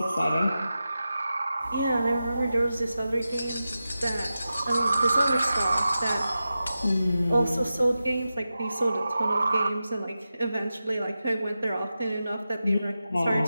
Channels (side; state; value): both; inverted; correlation -0.92